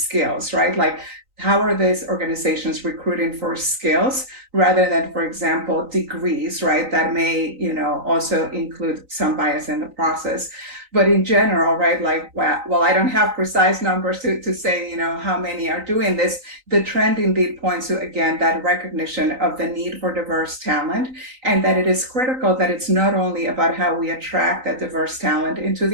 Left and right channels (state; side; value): late; left; 3.9 ms